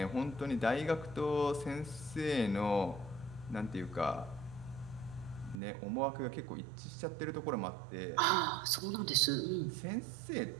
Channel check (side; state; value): left; drops out; at 5.6 s